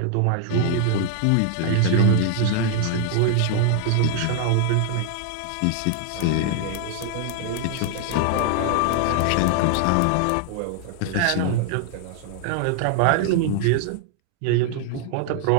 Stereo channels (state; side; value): different; both; correlation 0.00